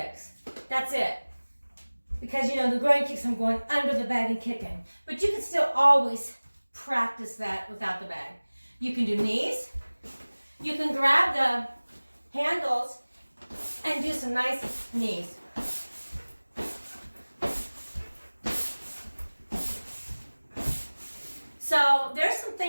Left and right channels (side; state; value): both; inverted; correlation -1.00